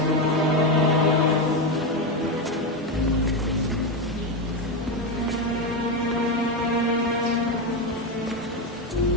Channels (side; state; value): both; normal; correlation 0.11